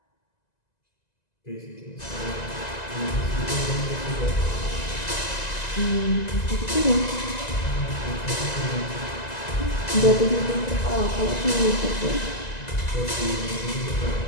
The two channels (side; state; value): right; late; 2.0 ms